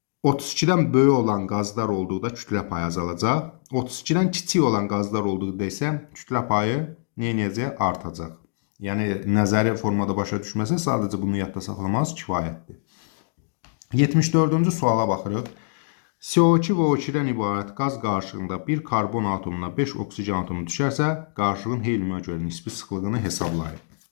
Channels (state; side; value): silent; right; digital silence